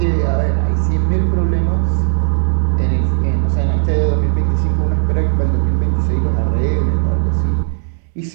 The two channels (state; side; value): silent; left; 69 dB below the other